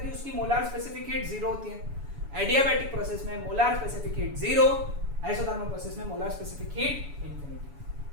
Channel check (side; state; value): left; late; 7.0 ms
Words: उसकी मोलार स्पेसिफिक हीट 0 होती है। एडियाबैटिक प्रोसेस में molar specific heat 0, isothermal process में मोलार स्पेसिफिक हीट इंफिनिटी।